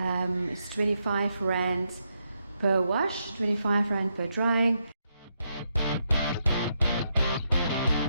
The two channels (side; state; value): both; inverted; correlation -0.81